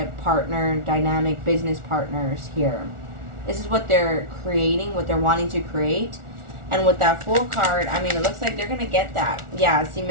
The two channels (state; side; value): late; left; 1.4 ms